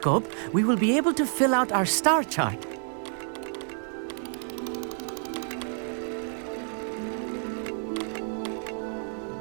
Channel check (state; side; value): silent; left; 59 dB below the other